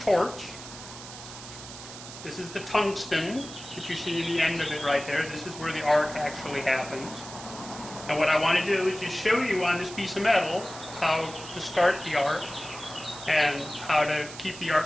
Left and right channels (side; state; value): right; noise; hiss, 13 dB below the sound